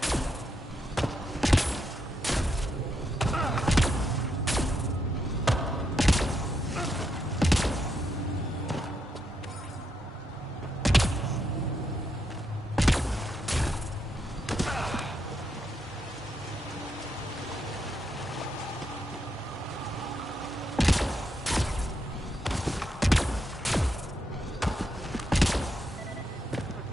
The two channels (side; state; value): both; normal; correlation 0.80